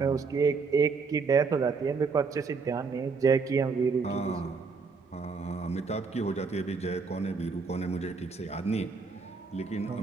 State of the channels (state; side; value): quieter; left; 4.8 dB